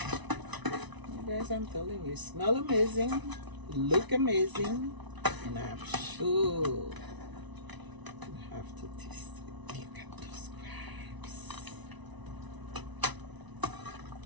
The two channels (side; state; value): left; late; 1.0 ms